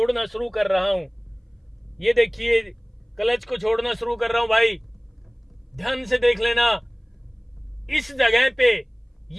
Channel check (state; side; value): identical; both; correlation 1.00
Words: शुरू कर रहा हूं। ये देखिए क्लच को छोड़ना शुरू कर रहा हूं भाई, ध्यान से देख लेना। इस जगह पे